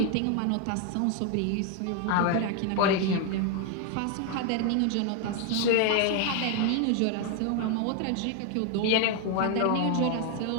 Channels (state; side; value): different; both; correlation 0.00